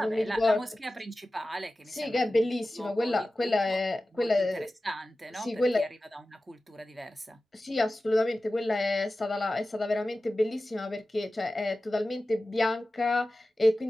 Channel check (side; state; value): both; normal; correlation 0.95